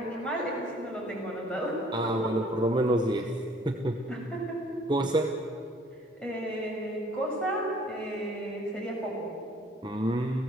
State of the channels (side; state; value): both; normal; correlation 0.57